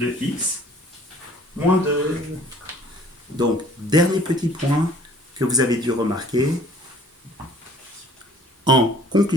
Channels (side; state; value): both; normal; correlation 0.54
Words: X moins 2. Donc, dernier petit point que vous avez dû remarquer. En